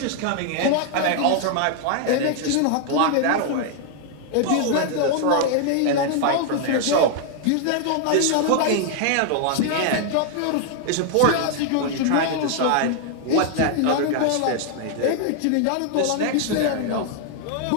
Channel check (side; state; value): both; different; correlation 0.00